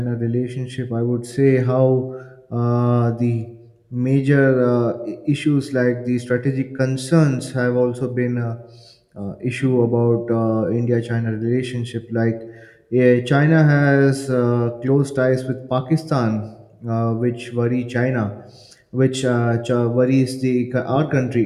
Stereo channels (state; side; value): identical; both; correlation 1.00